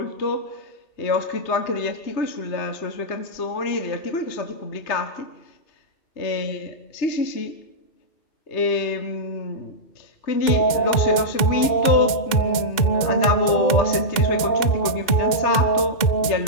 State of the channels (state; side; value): late; right; 2.2 ms